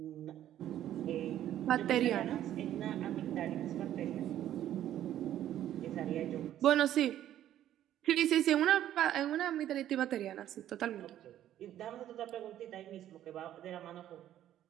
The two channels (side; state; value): left; quieter; 11.9 dB